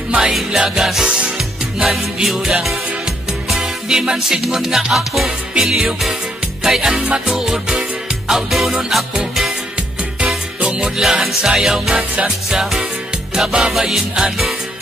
may lagas ngan biyuda. Di man sidngon nga ako pilyo, kay an matuod, aw dunon ako. Tungod lahan sayaw nga cha-cha, kababayin-an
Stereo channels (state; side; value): normal; both; correlation 0.73